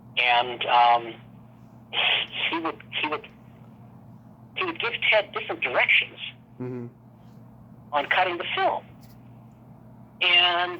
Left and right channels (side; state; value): both; identical; correlation 1.00